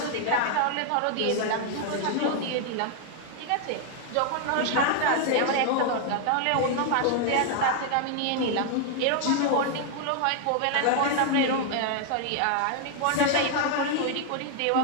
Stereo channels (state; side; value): different; both; correlation 0.00